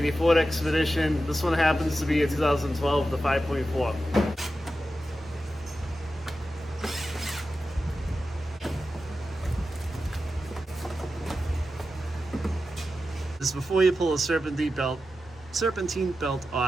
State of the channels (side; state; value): both; normal; correlation 0.91